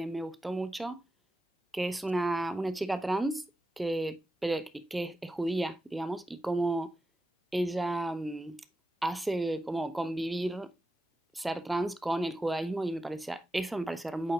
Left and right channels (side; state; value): both; normal; correlation 0.92